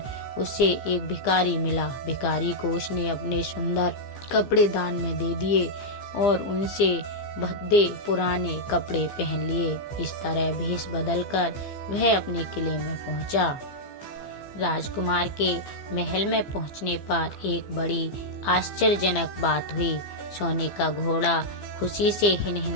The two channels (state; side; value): late; right; 15 ms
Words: उसे एक भिखारी मिला। भिखारी को उसने अपने सुंदर कपड़े दान में दे दिए और उनसे भद्दे पुराने कपड़े पहन लिए। इस तरह भेष बदलकर वह अपने किले में पहुंचा। राजकुमार के महल में पहुंचने पर एक बड़ी आश्चर्यजनक बात हुई। सोने का घोड़ा खुशी से